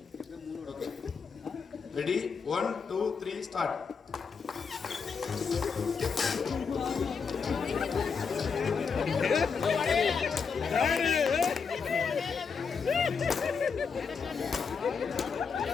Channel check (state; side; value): quieter; right; 5.6 dB